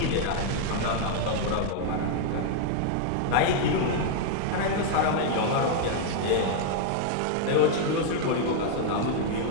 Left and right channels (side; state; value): both; different; correlation 0.00